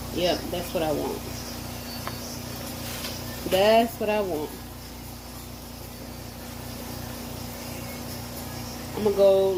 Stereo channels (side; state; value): both; identical; correlation 1.00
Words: Yep, that's what I want. That's what I want. I'm gonna go,